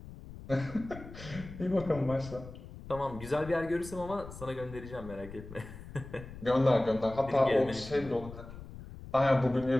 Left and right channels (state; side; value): noise; left; rumble, 14 dB below the sound